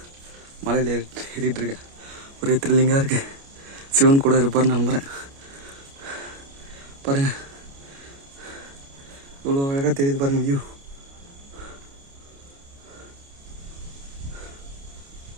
மலையில் ஏறிட்டு இருக்கேன். ஒரே த்ரில்லிங்காக இருக்கு. சிவன் கூட இருப்பார்னு நம்புகிறேன். பாருங்க, இவ்வளோ அழகாக தெரியுது பாருங்க வியூ.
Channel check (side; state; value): left; late; 29 ms